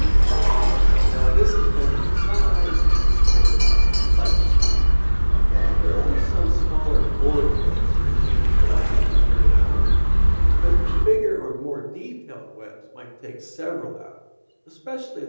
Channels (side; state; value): both; inverted; correlation -1.00